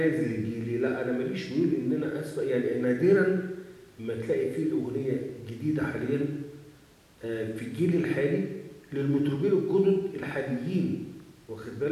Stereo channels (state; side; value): identical; both; correlation 1.00